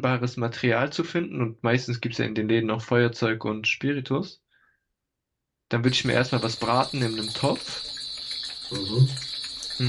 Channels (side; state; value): both; identical; correlation 1.00